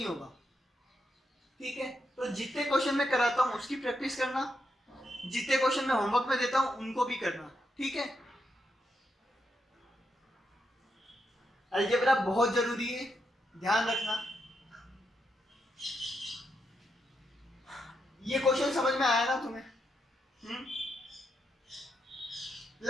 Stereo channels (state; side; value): normal; both; correlation 0.82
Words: होगा, ठीक है। तो जितने क्वेश्चन मैं कराता हूं उसकी प्रैक्टिस करना, जितने क्वेश्चन मैं होमवर्क में देता हूं उनको भी करना, ठीक है। अलजेब्रा बहुत जरूरी है, ध्यान रखना। ये क्वेश्चन समझ में आया ना तुम्हें?